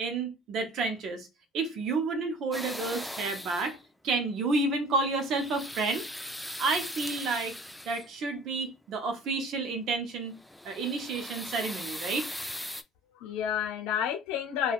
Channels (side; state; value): both; normal; correlation 0.46